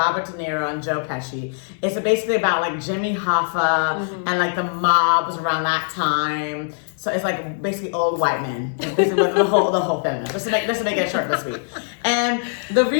De Niro, and Joe Pesci. It's basically about like Jimmy Hoffa and like the mobs around that time. So it's like basically old white men. It's basically the whole film. Just to make it short but sweet. And the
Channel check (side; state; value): right; silent; digital silence